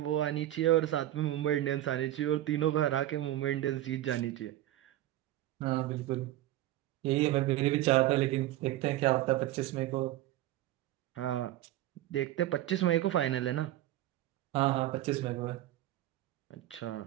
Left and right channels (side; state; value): left; quieter; 14.5 dB